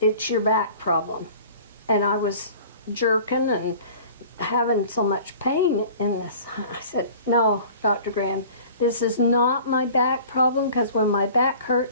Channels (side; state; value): both; inverted; correlation -0.45